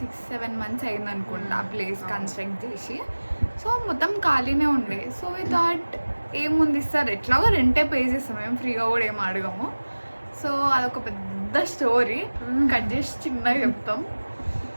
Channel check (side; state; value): both; inverted; correlation -1.00